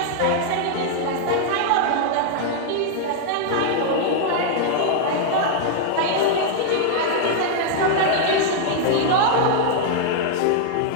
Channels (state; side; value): different; both; correlation -0.01